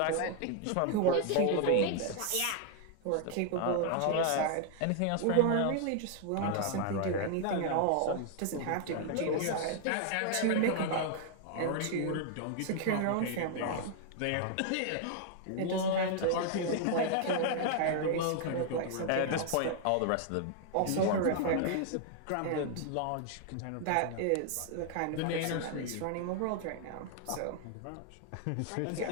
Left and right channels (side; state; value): both; different; correlation 0.00